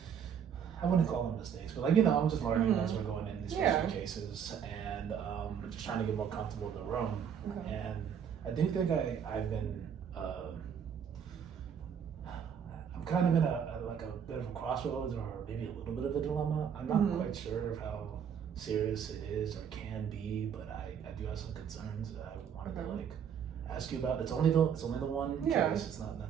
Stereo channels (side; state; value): left; quieter; 7.9 dB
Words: wouldn't call them mistakes, but I'm just learning as we're going in these first few cases, and just trying to get more comfortable in the room. Okay. And I do think I've been. I'm kind of in a bit of a crossroads, or maybe a little bit of a dilemma. I'm not quite sure of how serious it is or can be, but I do have some concerns that I wanted to ask you about. It's only the one case. It's not